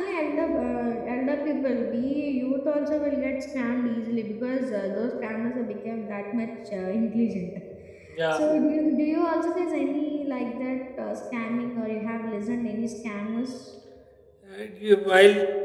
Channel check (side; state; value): both; identical; correlation 1.00